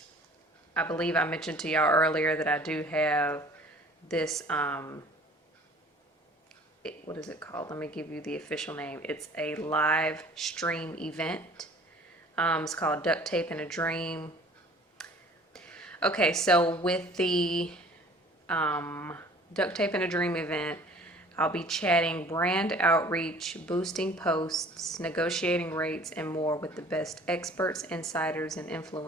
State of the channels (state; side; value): normal; both; correlation 0.50